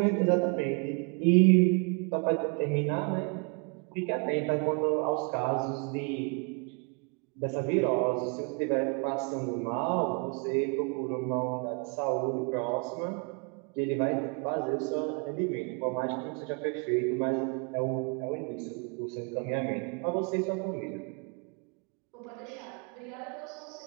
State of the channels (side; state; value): left; quieter; 35.4 dB